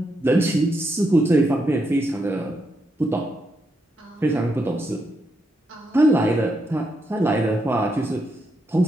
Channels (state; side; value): normal; both; correlation 0.81